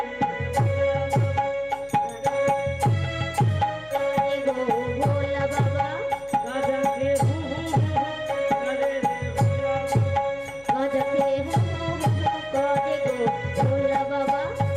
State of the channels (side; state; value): left; noise; hum, 27 dB below the sound